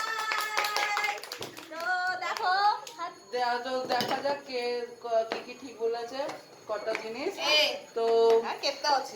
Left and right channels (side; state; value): both; identical; correlation 1.00